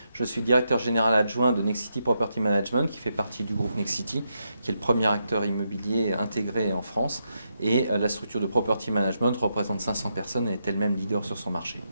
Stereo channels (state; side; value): inverted; both; correlation -0.83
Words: je suis directeur général adjoint de Nexity Property Management qui fait partie du groupe Nexity, qui est le premier acteur immobilier intégré en France. Et la structure de Property Management représente 500 personnes et est elle-même leader sur son marché.